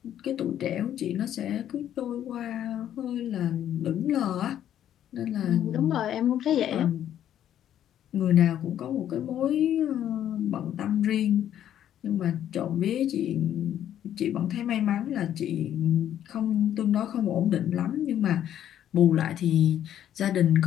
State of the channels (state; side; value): quieter; right; 10.8 dB